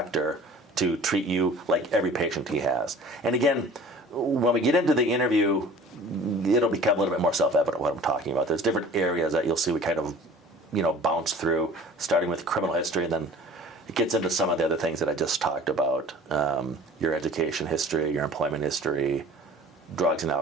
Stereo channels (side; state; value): both; normal; correlation 0.46